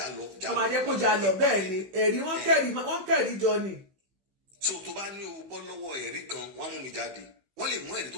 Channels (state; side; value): late; left; 15 ms